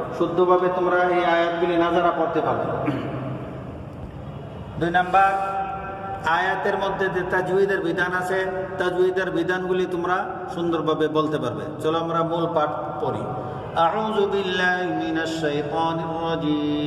শুদ্ধভাবে তোমরা এই আয়াতগুলি নাজারা পড়তে পারবে। 2 নাম্বার, আয়াতের মধ্যে যে তাজউইদের বিধান আছে, তাজউইদের বিধানগুলি তোমরা সুন্দরভাবে বলতে পারবে। চলো আমরা মূল পাঠ পড়ি। আউযু বিল্লাহি মিনাশ শাইতানির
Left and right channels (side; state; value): both; identical; correlation 1.00